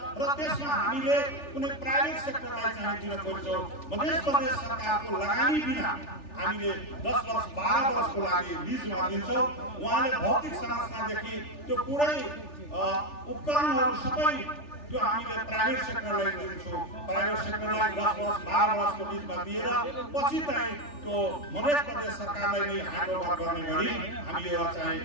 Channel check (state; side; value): late; right; 3.4 ms